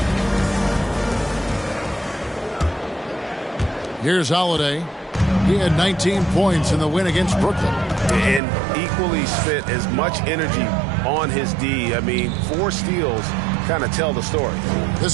Here's Holiday. He had 19 points in the win against Brooklyn. And equally spent as much energy on his D. I mean, 4 steals kind of tell the story.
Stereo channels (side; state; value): left; drops out; at 8.4 s